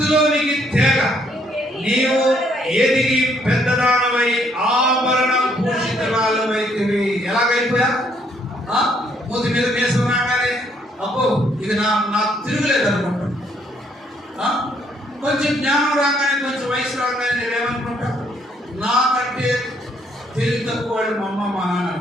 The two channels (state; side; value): normal; both; correlation 0.69